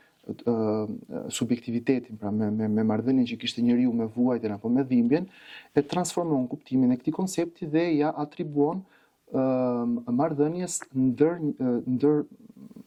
subjektivitetin, pra me marrëdhënien që kishte njeriu me vuajtjen apo me dhimbjen, e transformon kuptimin e këtij koncepti dhe ja atribuon marrëdhënies ndër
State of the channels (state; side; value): identical; both; correlation 1.00